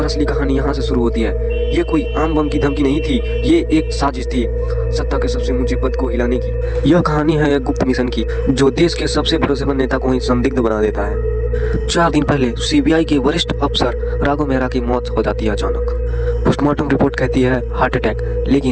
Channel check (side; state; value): both; identical; correlation 1.00